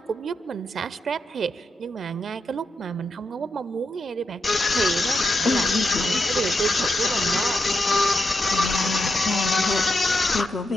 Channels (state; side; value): normal; both; correlation 0.84